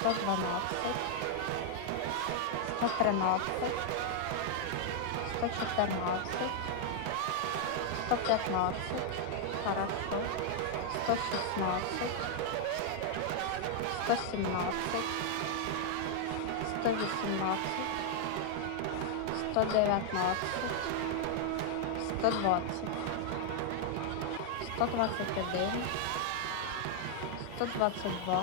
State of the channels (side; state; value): both; different; correlation 0.00